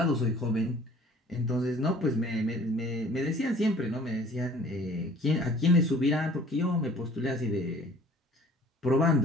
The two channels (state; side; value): normal; both; correlation 0.51